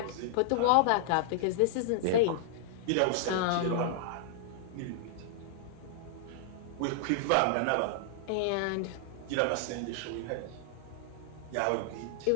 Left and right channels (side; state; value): both; different; correlation -0.01